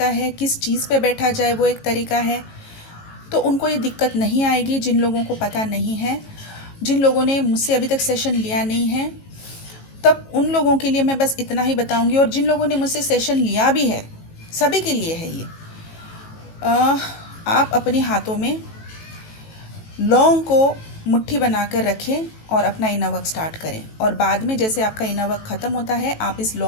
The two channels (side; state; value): right; late; 18 ms